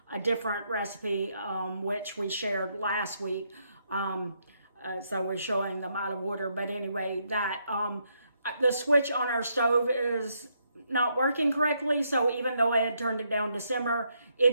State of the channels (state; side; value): inverted; both; correlation -0.76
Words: a different recipe, which we shared last week. So we're showing them out of order. But anyway, that the switch on our stove is not working correctly. So even though I had turned it down to simmer,